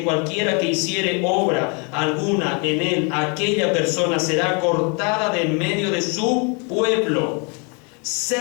cualquiera que hiciere obra alguna en él, aquella persona será cortada de en medio de su pueblo.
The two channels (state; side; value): quieter; right; 34.1 dB